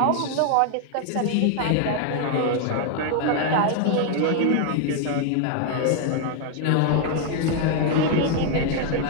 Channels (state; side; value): different; both; correlation 0.00